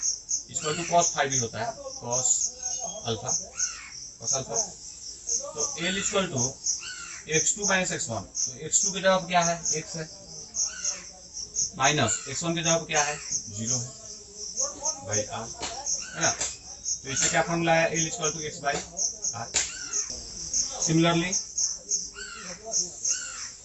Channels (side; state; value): both; identical; correlation 1.00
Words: इक्वल टू cos फाई भी होता है, cos अल्फा। तो L equal to x2 - x1, तो x2 की जगह क्या है, x है, माइनस x1 की जगह क्या है, 0 है बाई r, है ना। तो इससे क्या फॉर्मूला है, L equal to x by r। Similarly